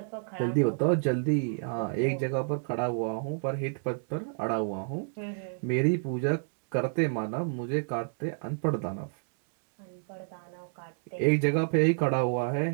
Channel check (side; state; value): left; silent; digital silence